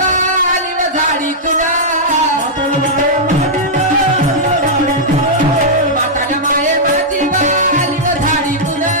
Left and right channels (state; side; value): normal; both; correlation -0.09